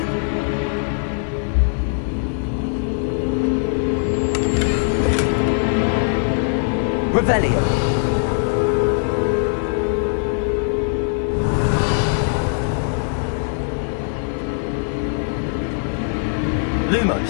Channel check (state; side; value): silent; right; 61 dB below the other